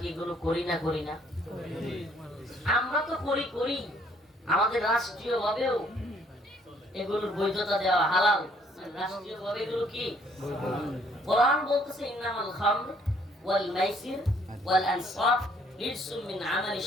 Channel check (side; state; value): both; normal; correlation 0.64